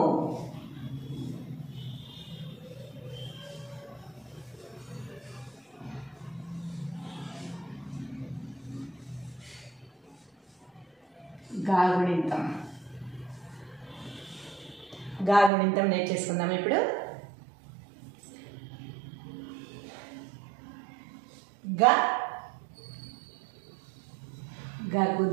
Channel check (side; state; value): left; drops out; at 15.5 s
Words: గాగుణింతం గాగుణింతం నేర్చేసుకుందాం. ఇప్పుడు గా గకు